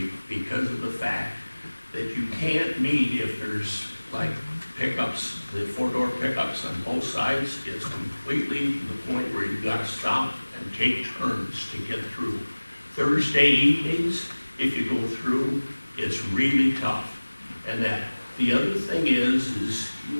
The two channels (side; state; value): both; inverted; correlation -1.00